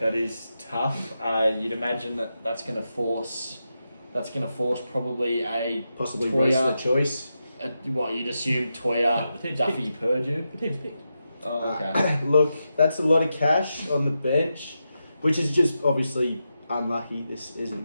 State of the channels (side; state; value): both; inverted; correlation -0.88